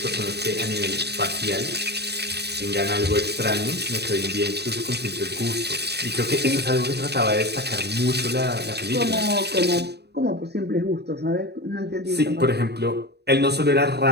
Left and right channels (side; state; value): left; late; 0.48 ms